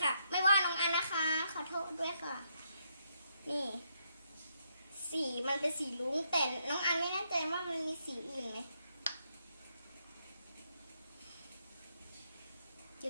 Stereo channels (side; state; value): both; inverted; correlation -0.76